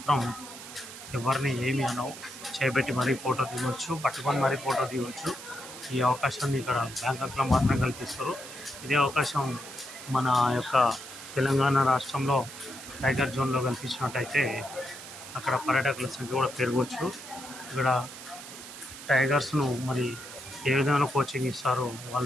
ఎవరిని ఏమి అనవు. చేపెట్టి మరీ ఫోటో దిగవచ్చు, పట్టుకొని మరీ ఫోటో దిగవచ్చు. ఈ అవకాశాన్ని ఇక్కడ బ్యాంకాక్లో మాత్రం కల్పిస్తారు. ఇదే అవకాశం మన యొక్క తెలంగాణ రాష్ట్రంలో టైగర్ జోన్లో కల్పించినట్టయితే అక్కడ పర్యాటకుల సంఖ్య కూడా పెరగవచ్చు. ఇక్కడ టైగర్స్ను మరి ఏ విధంగా కోచింగ్ ఇస్తారో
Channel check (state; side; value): noise; right; hiss, 13 dB below the sound